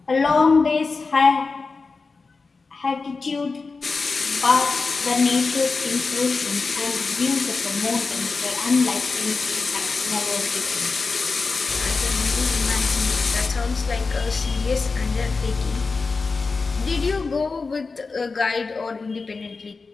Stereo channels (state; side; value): quieter; right; 4.2 dB